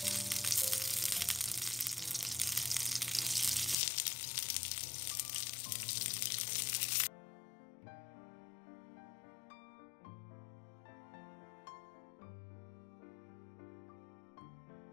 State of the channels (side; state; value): right; drops out; at 3.8 s